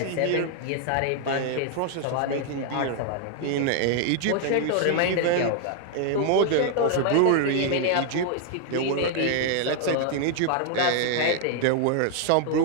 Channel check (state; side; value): different; both; correlation 0.00